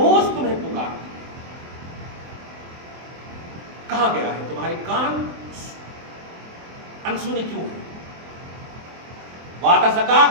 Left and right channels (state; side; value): late; left; 24 ms